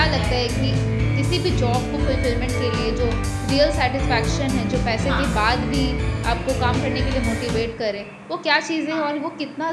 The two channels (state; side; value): identical; both; correlation 1.00